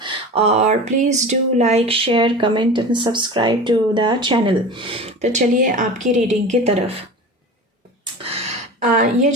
और please do like, share, comment and subscribe to the channel. तो चलिए आपकी reading की तरफ। ये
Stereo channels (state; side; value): normal; both; correlation 0.33